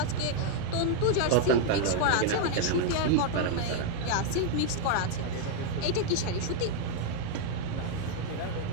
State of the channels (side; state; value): both; different; correlation 0.00